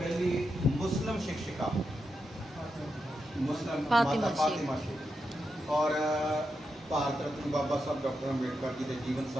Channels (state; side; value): normal; both; correlation 0.86